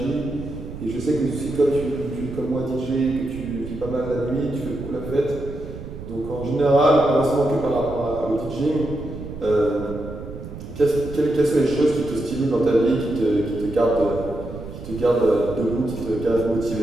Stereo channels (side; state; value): right; noise; rumble, 11 dB below the sound